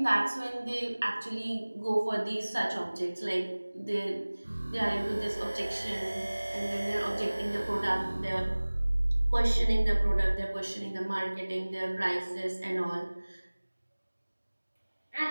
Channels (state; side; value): inverted; both; correlation -1.00